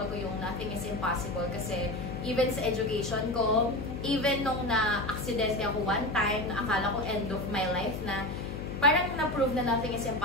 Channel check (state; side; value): noise; left; hum, 7 dB below the sound